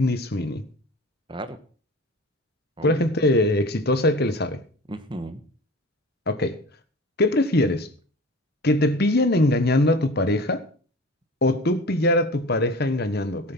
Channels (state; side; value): normal; both; correlation 0.37